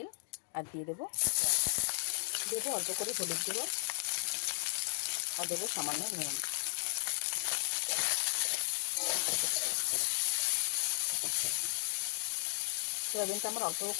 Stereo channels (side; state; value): right; silent; digital silence